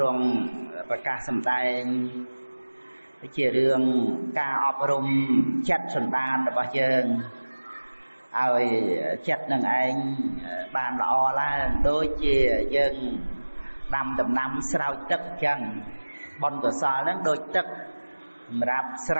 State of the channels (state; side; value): inverted; both; correlation -1.00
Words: រង់ប្រកាសសម្ដែងជារឿងការអប់រំចិត្តសន្តានរបស់យើងឲ្យចិត្តនឹងឯងបានល្អឡើងដូចជាយើងដាំដំណាំស្រោចទឹកអញ្ចឹងបុណ្យកុសលហ្នឹងដូចទឹកសម្រាប់ស្